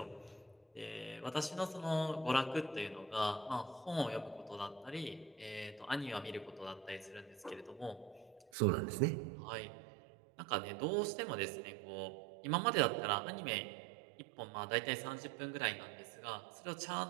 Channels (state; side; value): drops out; left; at 8.5 s